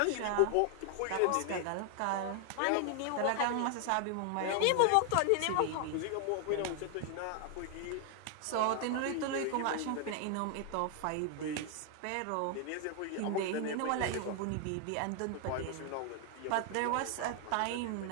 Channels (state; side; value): different; both; correlation 0.00